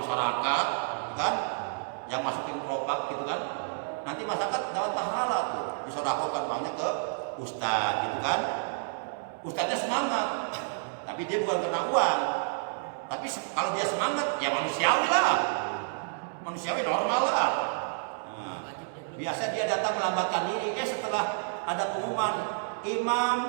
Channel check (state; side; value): silent; left; digital silence